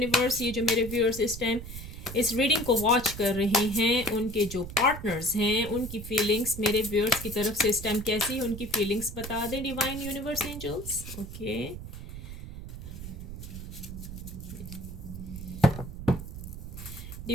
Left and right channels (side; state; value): right; noise; rumble, 10 dB below the sound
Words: ये जो मेरे व्यूअर्स इस टाइम इस रीडिंग को वॉच कर रहे हैं, उनके जो पार्टनर्स हैं, उनकी फीलिंग्स मेरे व्यूअर्स की तरफ से इस टाइम कैसी है, उनकी फीलिंग्स बता दें. Divine universe angels. Okay,